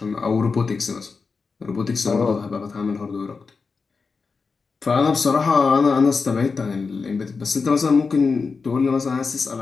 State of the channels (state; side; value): quieter; right; 4.8 dB